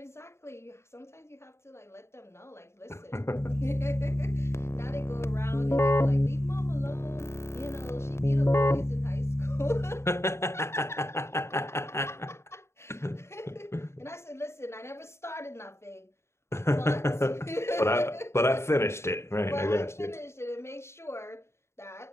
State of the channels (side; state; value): right; late; 0.13 ms